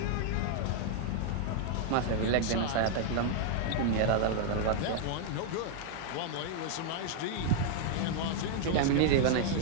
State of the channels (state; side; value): different; both; correlation 0.00